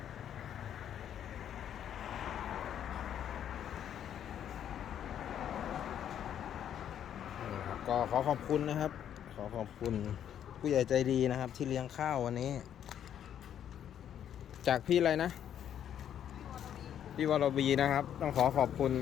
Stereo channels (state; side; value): quieter; right; 9.8 dB